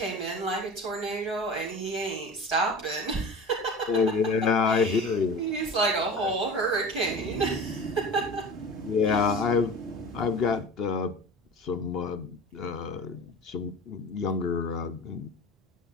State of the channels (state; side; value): normal; both; correlation 0.36